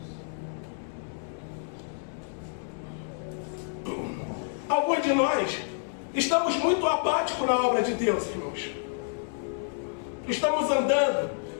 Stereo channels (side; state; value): right; silent; digital silence